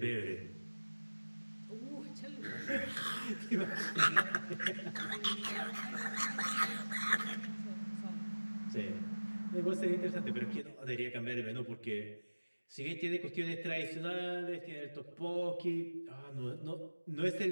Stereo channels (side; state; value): both; inverted; correlation -1.00